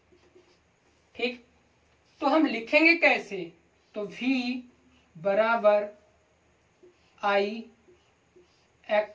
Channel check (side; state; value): both; identical; correlation 1.00